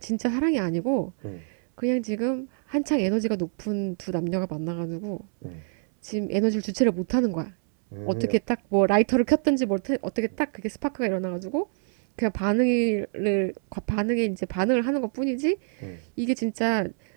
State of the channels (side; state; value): left; silent; 61 dB below the other